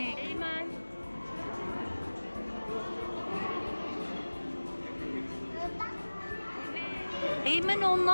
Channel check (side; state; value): both; inverted; correlation -1.00